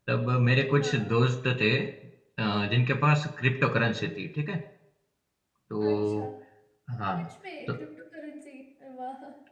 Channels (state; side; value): identical; both; correlation 1.00